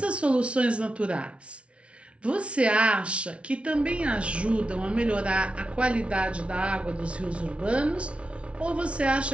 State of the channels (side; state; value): left; late; 0.061 ms